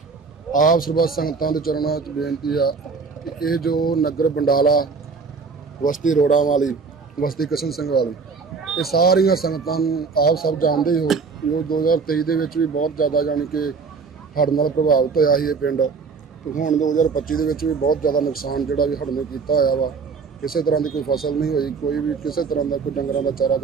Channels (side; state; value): left; quieter; 4.9 dB